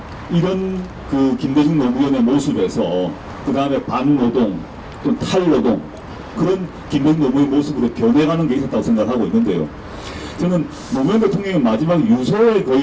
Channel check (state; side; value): identical; both; correlation 1.00